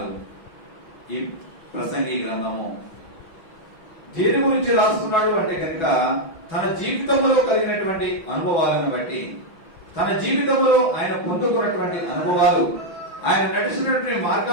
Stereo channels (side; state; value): right; late; 6.1 ms